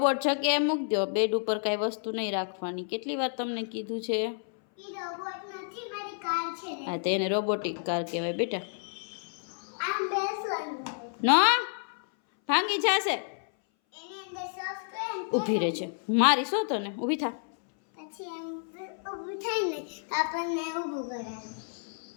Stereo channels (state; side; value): silent; right; 58 dB below the other